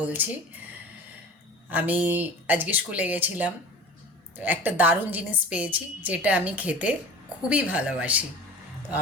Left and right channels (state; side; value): normal; both; correlation 0.38